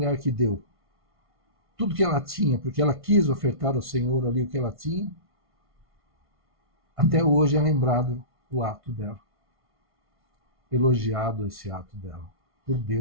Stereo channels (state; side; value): late; left; 1.5 ms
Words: que deu tudo que ela tinha, porque ela quis ofertar ao Senhor ali o que ela tinha, até hoje é lembrado o ato dela. Elogiado esse ato dela, por